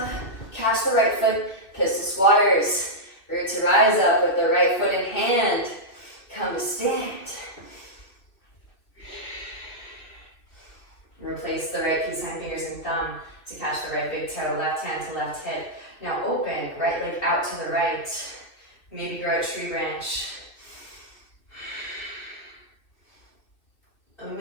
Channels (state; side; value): late; right; 2.4 ms